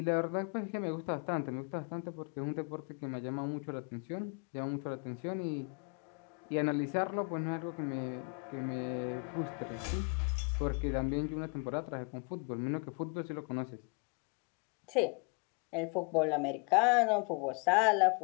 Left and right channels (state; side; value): quieter; right; 33.9 dB